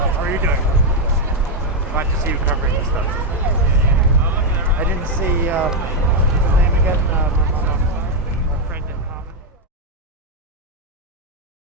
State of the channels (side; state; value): both; normal; correlation 0.03